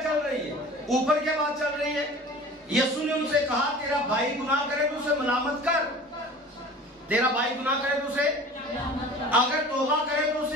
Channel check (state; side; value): normal; both; correlation 0.42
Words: चल रही है? ऊपर क्या बात चल रही है? यीशु ने उनसे कहा, तेरा भाई गुनाह करे तो उसे मलामत कर, तेरा भाई गुनाह करे तो उसे, अगर तौबा करे तो